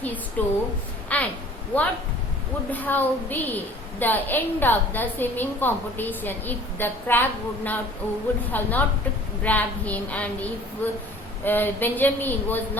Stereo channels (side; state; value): both; normal; correlation 0.49